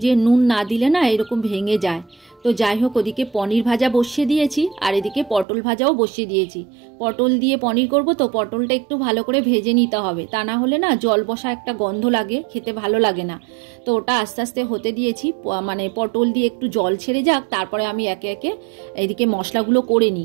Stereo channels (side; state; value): left; drops out; at 5.5 s